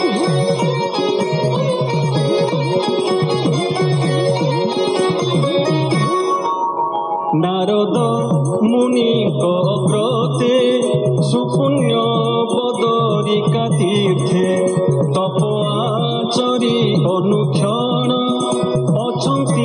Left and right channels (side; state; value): both; identical; correlation 1.00